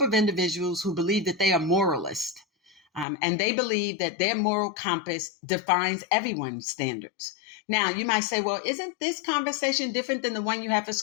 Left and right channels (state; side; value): drops out; right; at 3.1 s